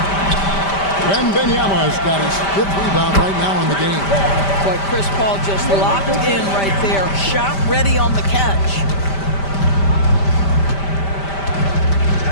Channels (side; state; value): right; late; 5.1 ms